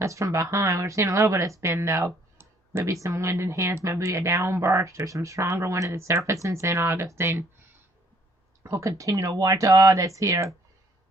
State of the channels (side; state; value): both; normal; correlation 0.63